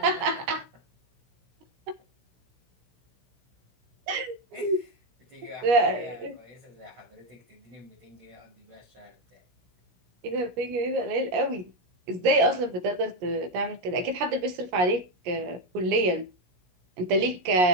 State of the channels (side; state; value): left; late; 17 ms